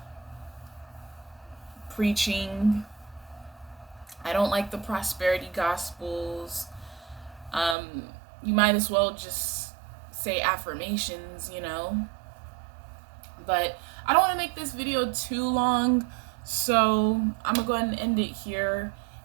preaching. I don't like the prosperity gospels. You might as well just say affirmations, you know. But I don't want to make this video too long, so I'm gonna go ahead and end it here.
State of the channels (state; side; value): drops out; left; at 7.8 s